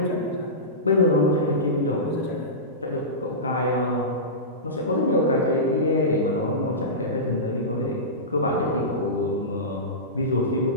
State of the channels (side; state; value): both; normal; correlation -0.19